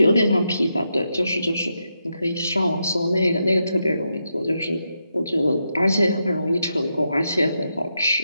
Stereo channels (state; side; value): inverted; both; correlation -0.84